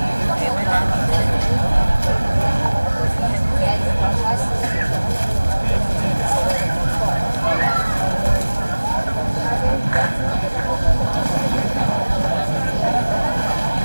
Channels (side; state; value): both; inverted; correlation -1.00